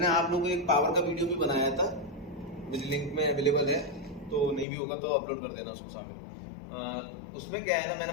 आप लोगों को एक पावर का वीडियो भी बनाया था, मुझे लिंक में अवेलेबल है, तो नहीं भी होगा तो अपलोड कर देना उसको सामने। उसमें क्या है ना,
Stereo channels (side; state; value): right; drops out; at 4.7 s